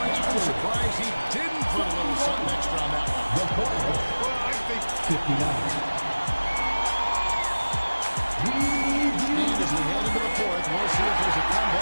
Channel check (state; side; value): inverted; both; correlation -1.00